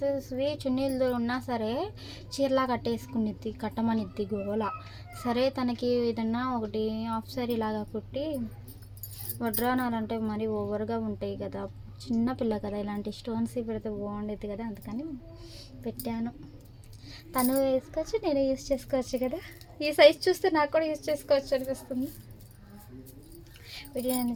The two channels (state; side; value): identical; both; correlation 1.00